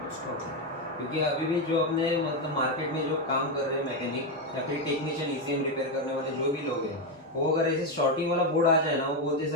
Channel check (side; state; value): both; normal; correlation 0.07